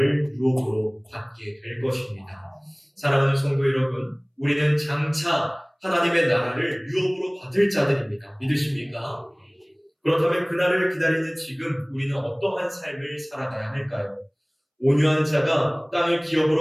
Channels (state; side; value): identical; both; correlation 1.00